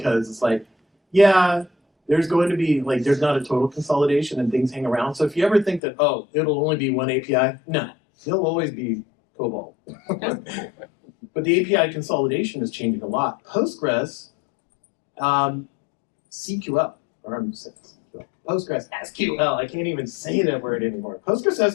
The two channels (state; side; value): drops out; right; at 5.8 s